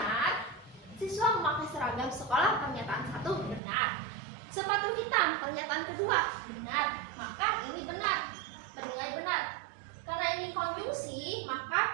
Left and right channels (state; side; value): drops out; left; at 3.6 s